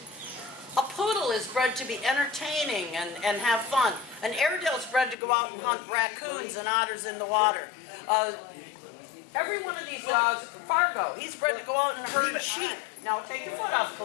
A poodle is bred to be entertaining and have fun. An Airedale is bred to go out and hunt raccoons and otters in the water. Every one of these dogs, Fargo, he's bred to go out and herd sheep. Now take your foot off,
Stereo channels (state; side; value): drops out; right; at 5.2 s